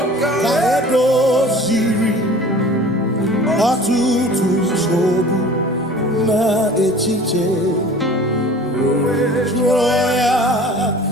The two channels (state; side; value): normal; both; correlation 0.44